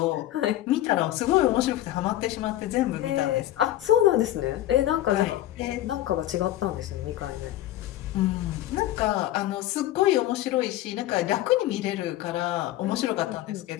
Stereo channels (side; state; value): right; quieter; 14.1 dB